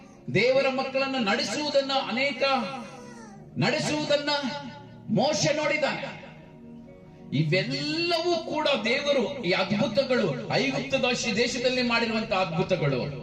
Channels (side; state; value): both; identical; correlation 1.00